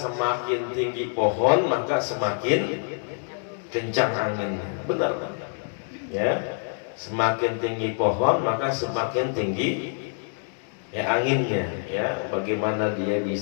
tinggi pohon maka semakin kencang anginnya. Benar, ya. Semakin tinggi pohon maka semakin tinggi ya anginnya. Ya, bagaimana dia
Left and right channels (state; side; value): silent; right; digital silence